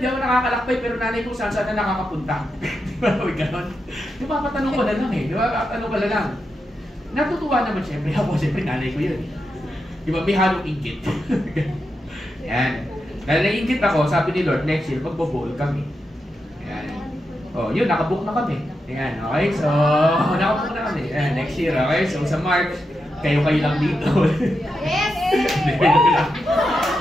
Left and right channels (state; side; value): normal; both; correlation 0.87